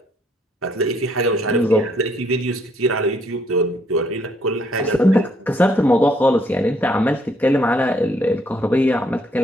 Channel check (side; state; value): both; normal; correlation 0.68